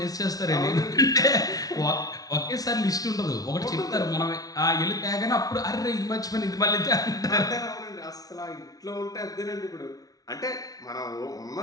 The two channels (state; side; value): late; right; 0.18 ms